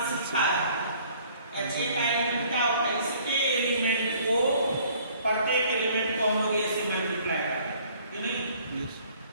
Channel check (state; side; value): inverted; both; correlation -0.57